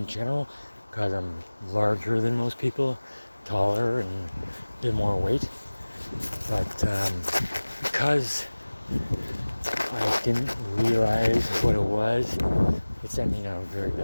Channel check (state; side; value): inverted; both; correlation -1.00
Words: general because I'm larger than most people, taller and a bit more weight. But because I didn't realize what it was, it sent me down a very